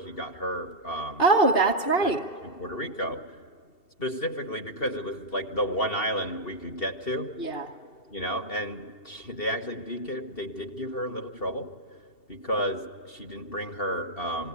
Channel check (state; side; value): late; right; 2.7 ms